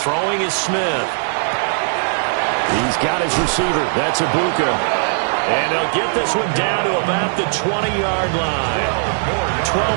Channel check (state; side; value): silent; left; digital silence